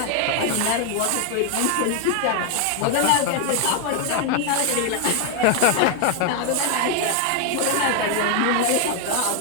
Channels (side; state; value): both; different; correlation 0.00